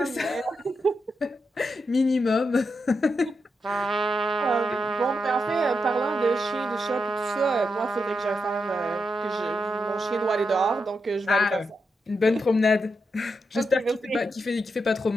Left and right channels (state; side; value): normal; both; correlation 0.85